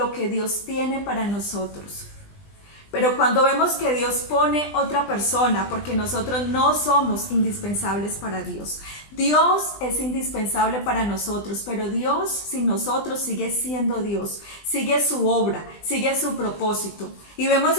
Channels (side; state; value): right; late; 20 ms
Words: que Dios tiene para nosotros. Pero cuando vemos que Dios pone otra persona, porque nosotros no somos indispensables para Dios. Dios es indispensable para nosotros, pero Dios sin nosotros sigue siendo Dios, sigue su obra, sigue su propósito. Y vemos